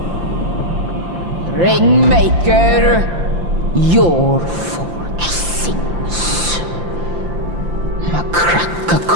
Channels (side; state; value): left; late; 5.8 ms